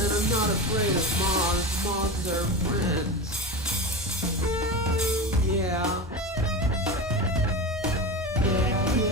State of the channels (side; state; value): both; normal; correlation 0.25